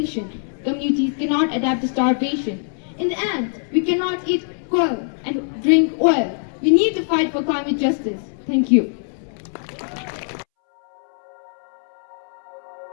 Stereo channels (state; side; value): silent; right; 64 dB below the other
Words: Communities cannot adapt to starvation. In the end, we cannot eat coal and drink oil. We need to fight for climate justice. Thank you.